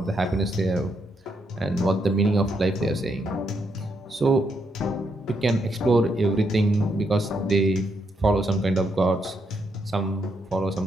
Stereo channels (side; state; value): both; normal; correlation 0.78